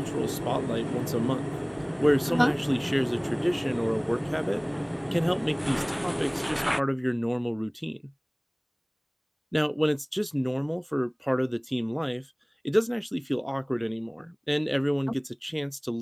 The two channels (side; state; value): both; identical; correlation 1.00